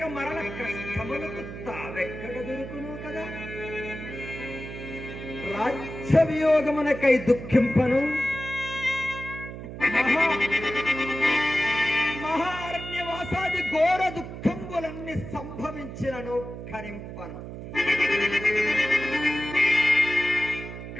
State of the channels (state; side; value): noise; right; hum, 10 dB below the sound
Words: మరణ కష్టములకు తావెక్కడ దొరుకును కదా. రాజ్య వియోగమునకై దుఃఖింపను, మహారణ్యవాసాది ఘోర దుఃఖంబులన్నీ సంభవించినను కరింపను.